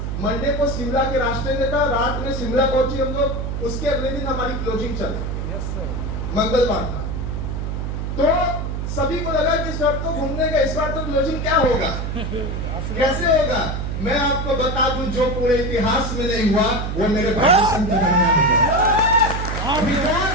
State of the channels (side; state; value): right; noise; hum, 3 dB below the sound